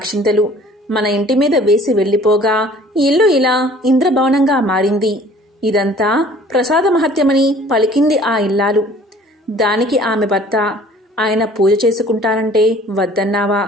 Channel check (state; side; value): normal; both; correlation 0.51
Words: మన ఇంటి మీద వేసి వెళ్లిపోగా ఇల్లు ఇలా ఇంద్రభవనంగా మారింది. ఇదంతా ప్రసాద మహత్యమని పలికింది ఆ ఇల్లాలు. దానికి ఆమె భర్త, ఆయన పూజ చేసుకుంటానంటే వద్దన్నావా?